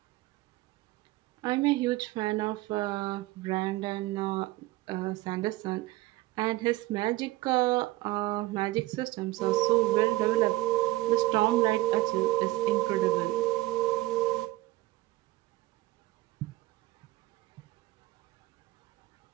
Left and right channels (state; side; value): quieter; left; 18.5 dB